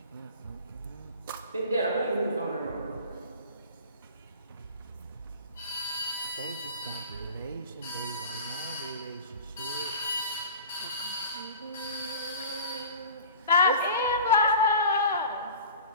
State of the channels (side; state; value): both; inverted; correlation -0.40